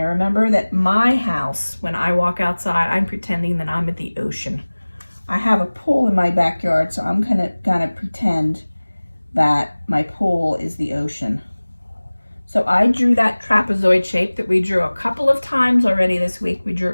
Remember that my house, when I walk outside, I'm pretending that I'm at the ocean. I have a pool in my backyard, so I'm gonna pretend that my pool is the ocean. So I drew that trapezoid shape that we drew a couple of times already this week. We drew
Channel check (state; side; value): inverted; both; correlation -1.00